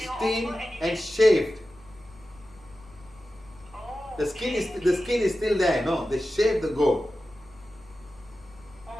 will steamed offer and anything. shaved. Oh, The skin okay. is still there. No, they shaved the goat,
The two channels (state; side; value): noise; left; rumble, 25 dB below the sound